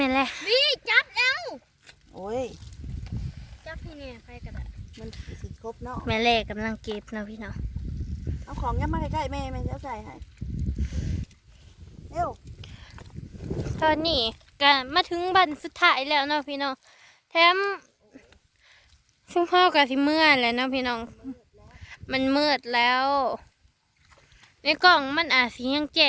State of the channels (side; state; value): both; identical; correlation 1.00